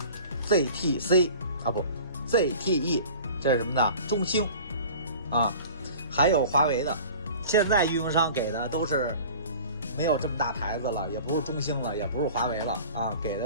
ZTC 啊不 ZTE， 这是什么的？中兴啊，还有华为的。现在运营商给的都是没有这么大牌子了，也不是中兴了，也不是华为了啊，给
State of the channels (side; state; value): both; inverted; correlation -0.42